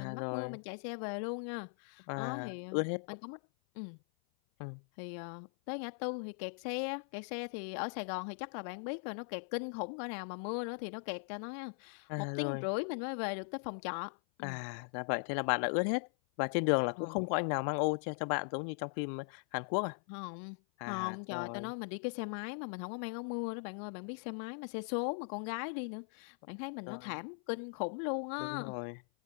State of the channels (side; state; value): right; silent; 51 dB below the other